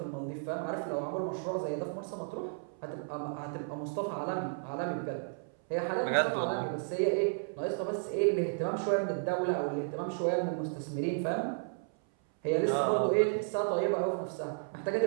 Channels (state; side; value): silent; left; 56 dB below the other